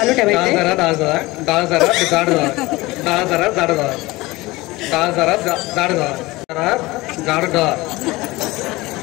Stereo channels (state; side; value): quieter; right; 20.8 dB